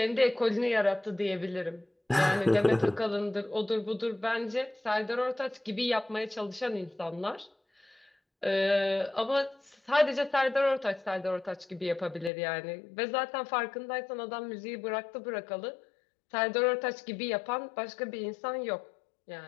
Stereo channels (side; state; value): right; drops out; at 12.3 s